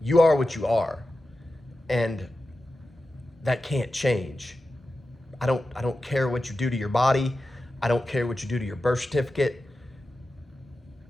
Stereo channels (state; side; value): normal; both; correlation 0.93